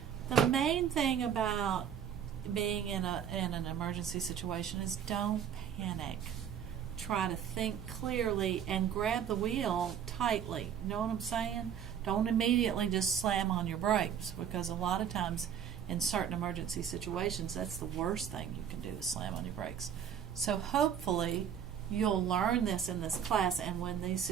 The main thing about being in an emergency situation is don't panic. try to think clearly and grab the wheel tightly. You know what I'm saying? Don't immediately just slam on your brakes, because a lot of times in certain emergency situations, that's the worst thing you can do is slam on your brakes. So hopefully you'll learn this in this class, and when these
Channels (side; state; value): left; quieter; 8.6 dB